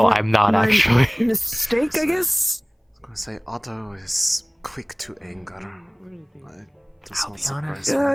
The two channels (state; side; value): identical; both; correlation 1.00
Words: I'm not my actually. Mistake, I guess. I was gonna say Otto is quick to anger. It does I'll not be surprise